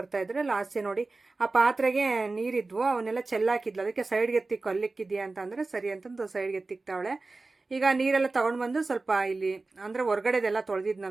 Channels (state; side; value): quieter; left; 3.5 dB